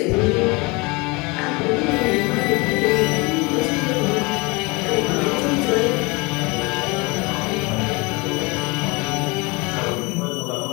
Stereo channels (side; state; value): right; quieter; 26.2 dB